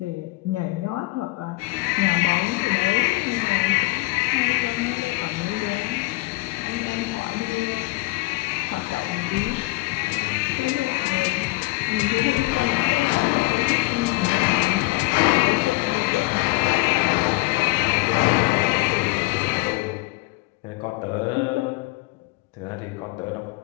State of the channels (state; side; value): quieter; right; 22.6 dB